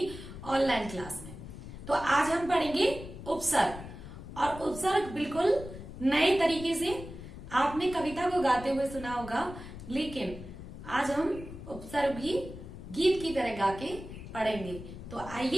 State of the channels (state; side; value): noise; left; rumble, 12 dB below the sound